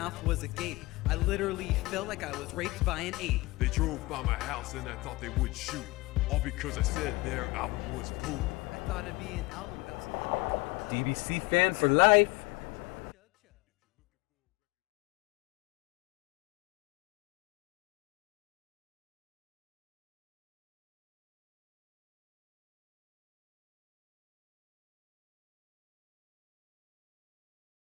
was agape. I literally felt like I was raped by an ape. They drove by my house and I thought they would shoot. All because I said their album was poop. I thought it'd be an album about some up-and-coming DBC fan for life.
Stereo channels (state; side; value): quieter; right; 21.8 dB